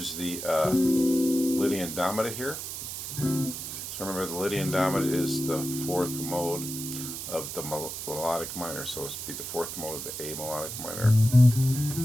the Lydian Dominant here. So remember, the Lydian Dominant is the 4th mode of the melodic minor, so it's be the 4th mode of the A melodic minor.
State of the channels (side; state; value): right; noise; hiss, 7 dB below the sound